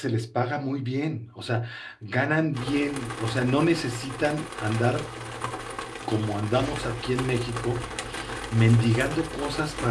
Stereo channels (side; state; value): both; identical; correlation 1.00